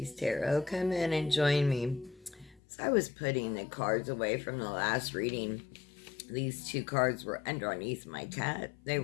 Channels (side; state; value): right; drops out; at 2.6 s